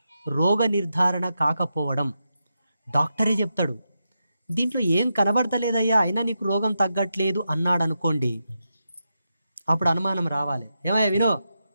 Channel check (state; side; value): inverted; both; correlation -0.87